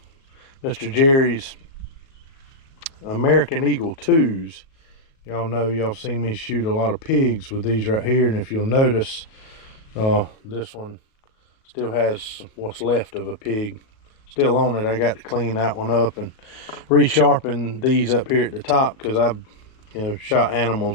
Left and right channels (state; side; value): late; right; 37 ms